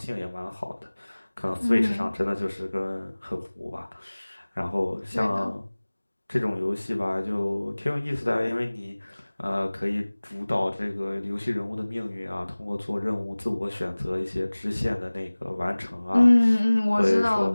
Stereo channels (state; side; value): inverted; both; correlation -1.00